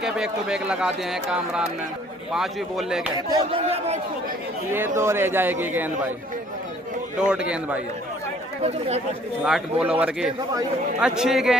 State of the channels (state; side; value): normal; both; correlation 0.58